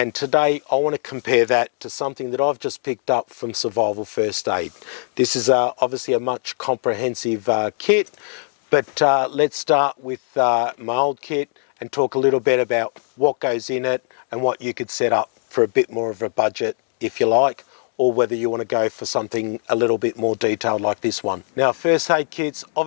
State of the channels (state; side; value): silent; right; 57 dB below the other